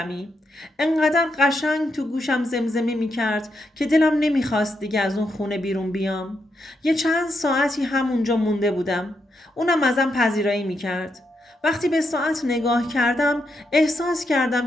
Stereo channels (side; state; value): both; normal; correlation 0.82